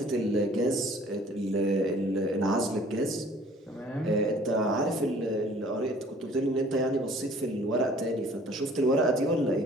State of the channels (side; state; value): both; normal; correlation 0.53